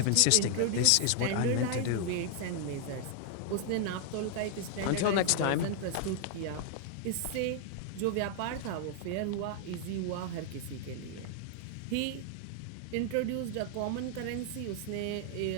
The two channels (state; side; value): different; both; correlation 0.00